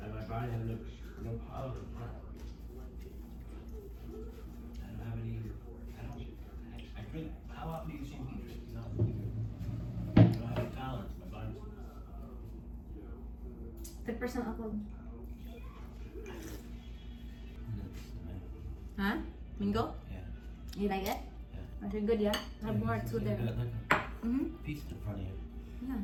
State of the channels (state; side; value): identical; both; correlation 1.00